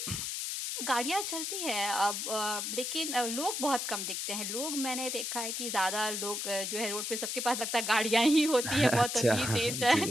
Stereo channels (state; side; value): noise; left; hiss, 3 dB below the sound